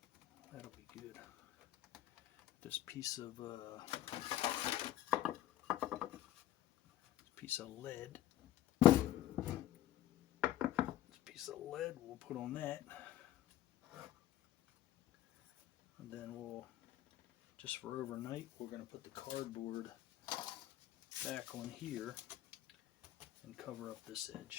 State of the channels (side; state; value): right; quieter; 13.2 dB